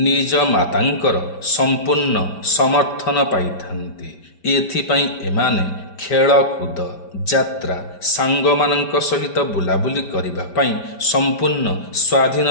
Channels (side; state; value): right; late; 5.1 ms